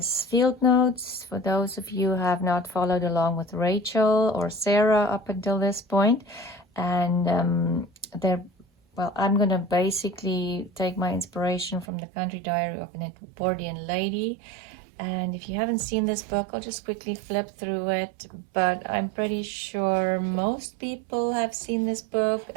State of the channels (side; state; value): left; drops out; at 11.9 s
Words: field notes for those of you who have not followed along with Rachel or Sarah up until this point. And I'm going to basically take my inspiration from the Country Diary of an Edwardian Lady. And if you haven't seen this book, I'll just quickly flip through it. But I'm pretty sure most people have seen this book.